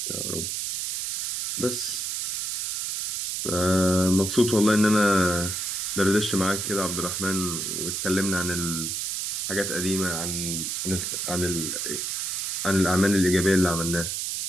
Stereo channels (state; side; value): noise; right; hiss, 1 dB below the sound